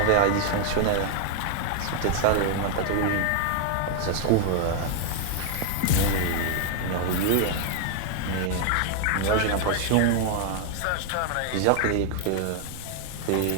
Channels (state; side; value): different; both; correlation 0.00